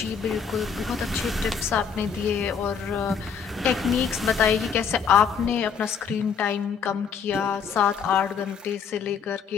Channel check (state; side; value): quieter; right; 6.6 dB